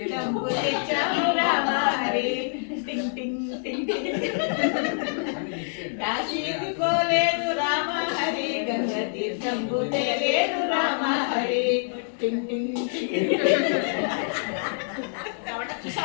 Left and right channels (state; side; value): silent; right; digital silence